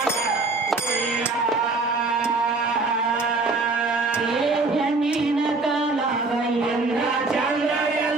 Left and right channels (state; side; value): quieter; left; 3.6 dB